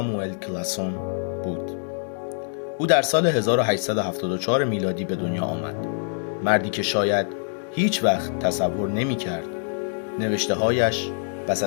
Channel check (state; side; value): silent; right; 62 dB below the other